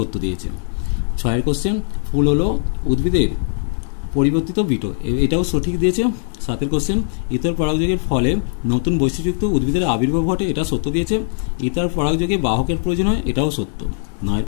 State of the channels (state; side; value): silent; right; 57 dB below the other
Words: দিয়েছে। 6 কোশ্চেন, ফুল হলো উদ্ভিদের পরিবর্তিত বিটো। এটাও সঠিক দিয়েছে। 7 কোশ্চেন, ইতর পরাগযোগের ফলে নতুন বৈশিষ্ট্যযুক্ত উদ্ভিদের আবির্ভাব ঘটে। এটা সত্য দিয়েছে। ইতর পরাগযোগে বাহকের প্রয়োজন হয়। এটাও সত্য। 9